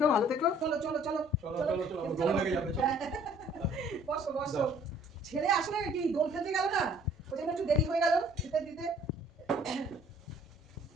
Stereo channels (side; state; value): both; normal; correlation 0.57